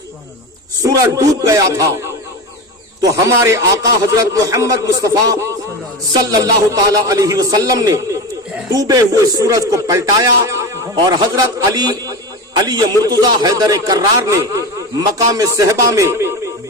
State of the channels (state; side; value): normal; both; correlation 0.24